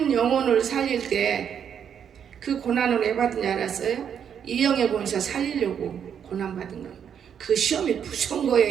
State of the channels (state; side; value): quieter; left; 8.1 dB